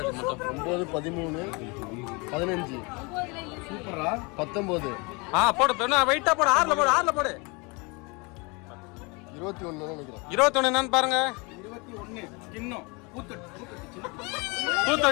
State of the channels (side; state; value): right; quieter; 28.9 dB